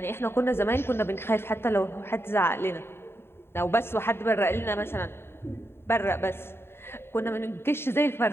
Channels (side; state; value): right; late; 0.11 ms